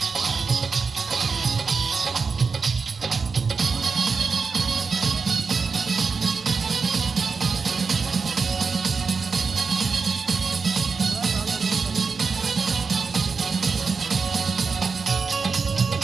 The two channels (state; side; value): quieter; left; 4.9 dB